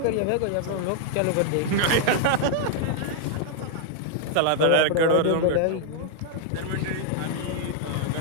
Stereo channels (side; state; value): both; different; correlation 0.00